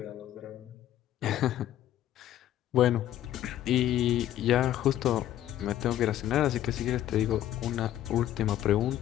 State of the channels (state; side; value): quieter; right; 12.4 dB